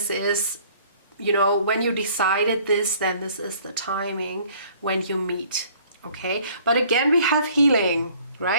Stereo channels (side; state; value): both; inverted; correlation -0.56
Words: is, you know, when you decided this, then this is the timing when you meet. Okay, but again, we have healing,